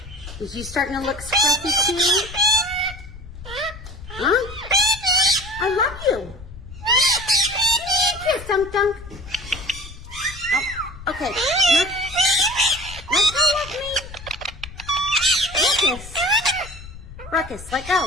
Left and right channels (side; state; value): left; noise; rumble, 15 dB below the sound